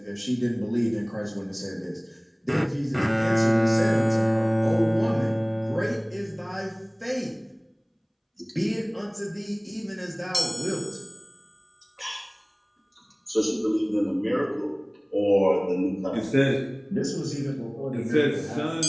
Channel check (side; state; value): both; identical; correlation 1.00